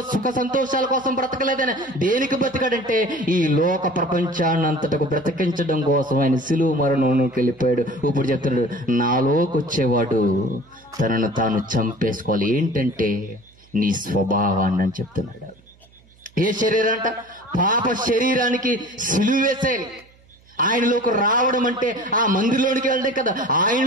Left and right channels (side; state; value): right; noise; hum, 29 dB below the sound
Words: సుఖ సంతోషాల కోసం బ్రతకలేదైనా. దేనికి బ్రతికాడంటే ఈ లోక ప్రపంచాన్ని అంతటకు బ్రతికించడం కోసం ఆయన సిలువ మరణంలోకి వెళ్ళిపోయాడు. ఇప్పుడు చెప్తున్నాడు, నాలోకి వచ్చేవాడు తనను తాను చంపేసుకోవాలి. ఏంటంటే నీ స్వభావాన్ని అని చెప్తున్నాడు. ఏ శరీరం అంట? పాప శరీరానికి సిలువ వేసేయాలి. ఆయనలోకి రావడం అంటే ఆ మందిలోనికి వెళ్ళడం కదా.